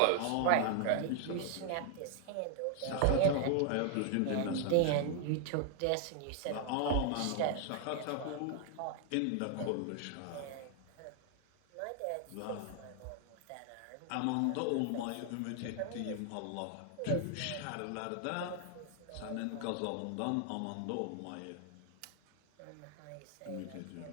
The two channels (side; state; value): both; different; correlation 0.00